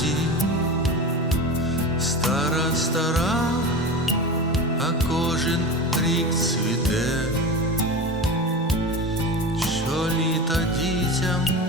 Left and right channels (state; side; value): normal; both; correlation 0.27